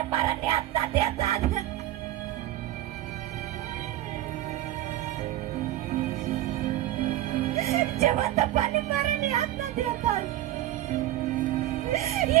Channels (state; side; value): quieter; left; 14.3 dB